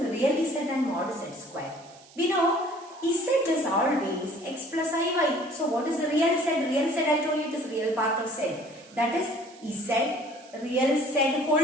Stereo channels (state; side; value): noise; right; hiss, 24 dB below the sound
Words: real z and mod z square? We know z is always x plus iy. So, what is the real z? Real z, I told you it is real part of z. That is z, real z